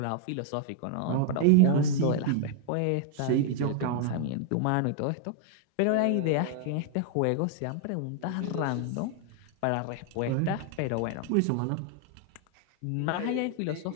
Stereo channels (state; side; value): different; both; correlation 0.00